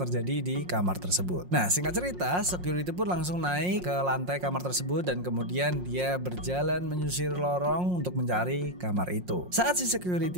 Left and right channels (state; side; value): late; left; 5.6 ms